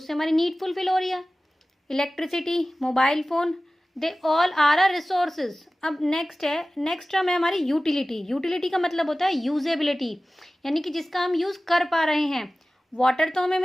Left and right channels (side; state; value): both; normal; correlation 0.97